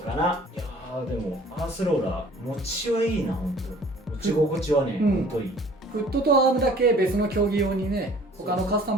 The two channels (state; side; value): normal; both; correlation 0.52